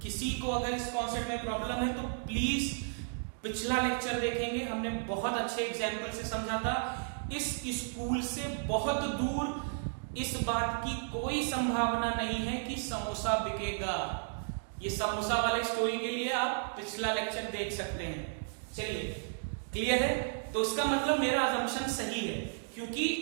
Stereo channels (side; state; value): left; silent; digital silence